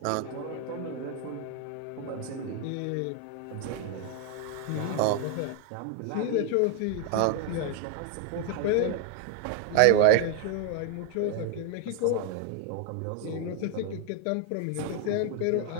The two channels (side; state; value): both; different; correlation 0.00